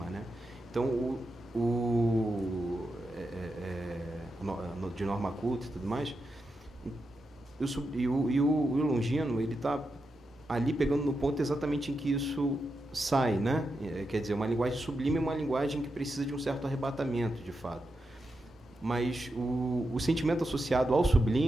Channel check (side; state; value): both; normal; correlation 0.87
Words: né? Então, de norma culta e tudo mais, e o Longino, ele está ali pegando no ponto exatamente em que isso sai, né? Quer dizer, uma linguagem sublime é uma linguagem que precisa de um certo arrebatamento, de fato. Mas o sentimento associado ao